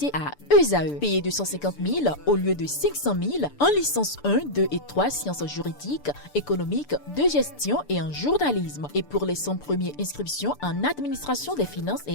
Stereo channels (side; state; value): right; late; 6.8 ms